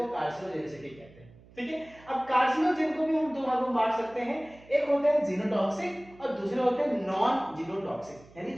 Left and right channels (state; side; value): noise; right; hum, 24 dB below the sound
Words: कार्सिनोजेनिसिटी कहते हैं। ठीक है, अब कार्सिनोजेन को भी हम 2 भागों में बांट सकते हैं, एक होता है जीनोटॉक्सिक और दूसरे होते हैं नॉन जीनोटॉक्सिक। यानी